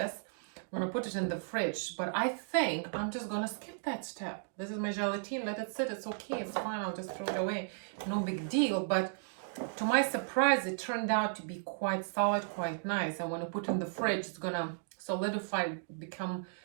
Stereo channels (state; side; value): silent; left; digital silence